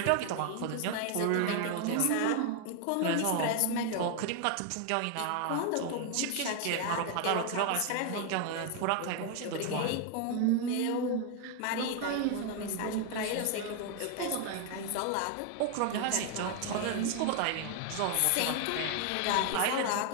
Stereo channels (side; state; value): both; different; correlation 0.00